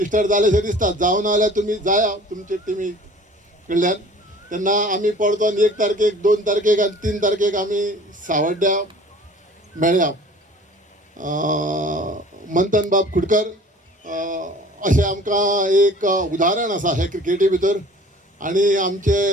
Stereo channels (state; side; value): normal; both; correlation 0.48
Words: जालेशें दिसता. जावं ना जाल्यार तुमी जाया तुमचे टिमी कडल्यान. तेन्ना आमी परतून 1 तारखेक 2 तारखेक आनी 3 तारखेक आमी सावड्ड्या मेळया. मंथन बाब खुडकर अशें आमकां एक उदाहरण आसा हे क्रिकेटी भितर आणि